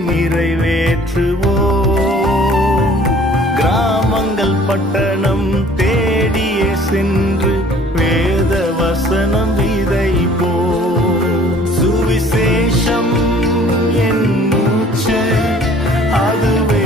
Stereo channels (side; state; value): both; normal; correlation 0.53